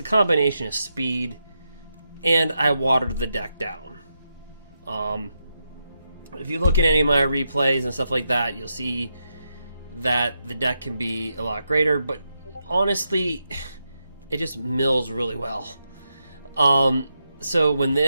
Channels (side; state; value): both; inverted; correlation -0.85